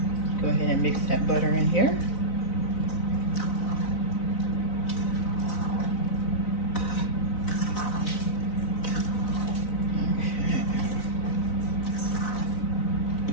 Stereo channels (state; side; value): late; right; 3.9 ms